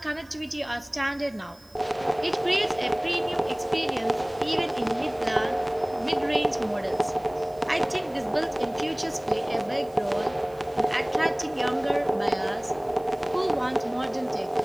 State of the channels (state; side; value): noise; right; hiss, 28 dB below the sound